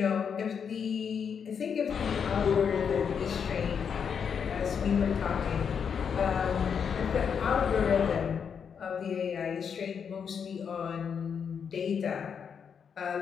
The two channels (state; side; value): quieter; right; 7.0 dB